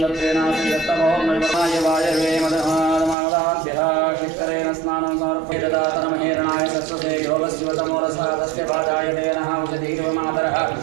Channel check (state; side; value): drops out; left; at 3.2 s